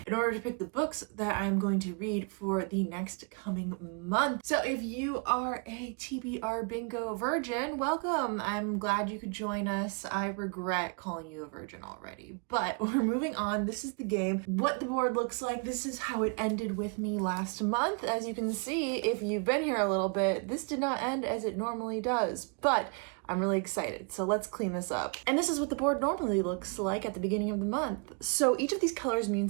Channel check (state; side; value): quieter; left; 35.5 dB